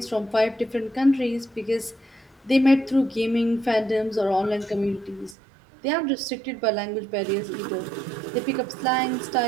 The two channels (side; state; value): left; drops out; at 5.4 s